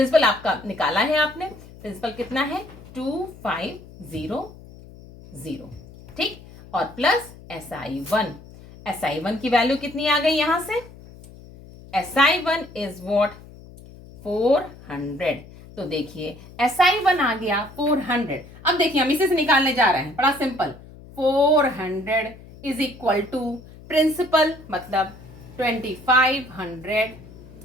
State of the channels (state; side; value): noise; left; hum, 19 dB below the sound